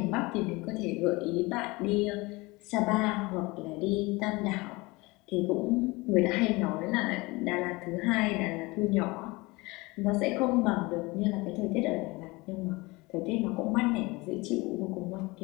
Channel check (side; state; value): right; quieter; 23.6 dB